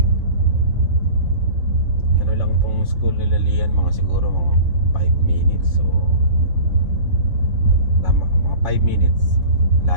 Lang tong school nila Lian, mga siguro mga 5 minutes. So tama, mga 5 minutes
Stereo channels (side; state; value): left; late; 3.6 ms